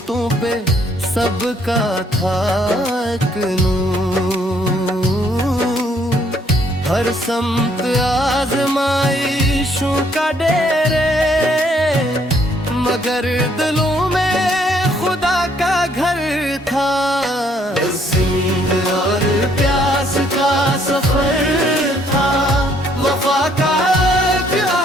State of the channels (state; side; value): normal; both; correlation 0.67